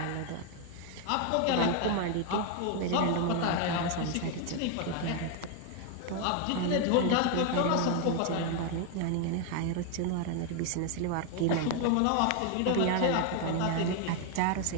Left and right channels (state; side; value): different; both; correlation 0.01